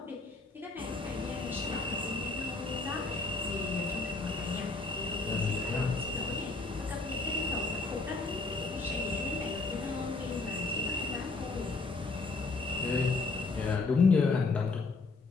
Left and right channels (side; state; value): right; quieter; 3.7 dB